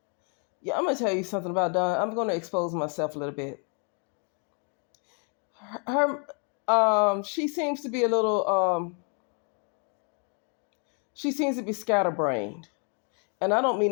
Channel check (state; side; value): quieter; right; 38.9 dB